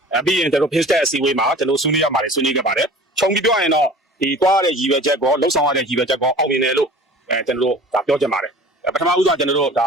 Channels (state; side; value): normal; both; correlation 0.43